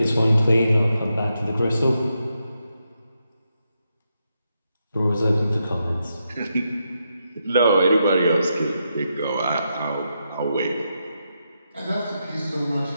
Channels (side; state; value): both; inverted; correlation -0.84